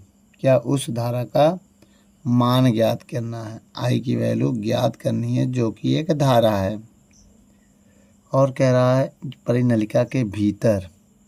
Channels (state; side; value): identical; both; correlation 1.00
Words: क्या? उस धारा का मान ज्ञात करना है। आई की वैल्यू ज्ञात करनी है, जो कि एक धारा है। और कह रहा है परिनलिका के भीतर